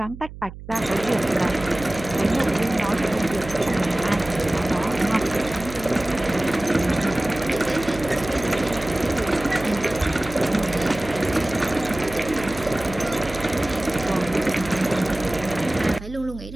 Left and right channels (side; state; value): right; noise; hum, 14 dB below the sound